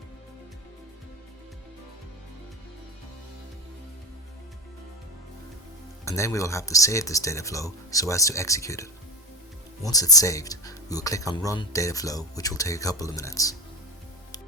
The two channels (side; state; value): both; normal; correlation 0.20